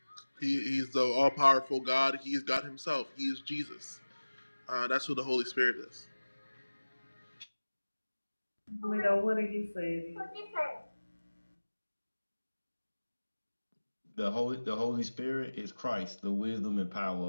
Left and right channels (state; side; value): inverted; both; correlation -1.00